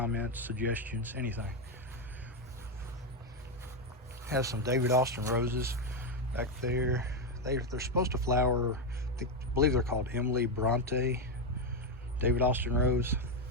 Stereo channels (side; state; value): both; normal; correlation 0.06